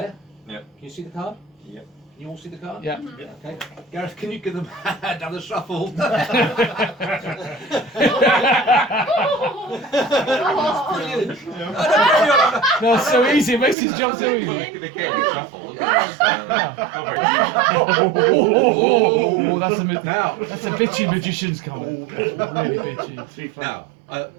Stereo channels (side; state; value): left; drops out; at 13.8 s